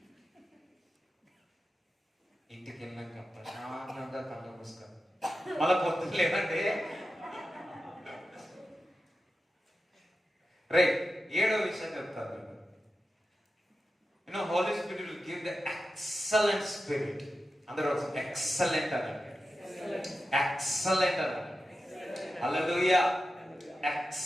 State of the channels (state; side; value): normal; both; correlation 0.91